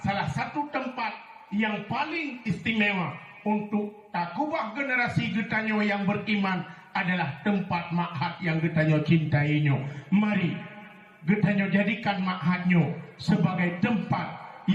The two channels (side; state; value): both; identical; correlation 1.00